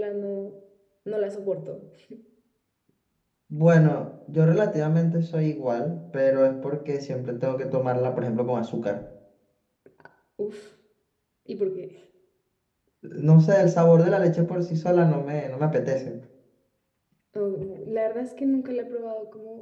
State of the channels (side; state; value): both; identical; correlation 1.00